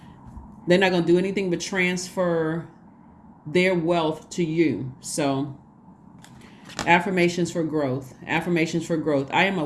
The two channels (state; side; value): identical; both; correlation 1.00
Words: They're not going to do anything but transfer their wealth to you. So affirmations for growth. Affirmations for growth. I am a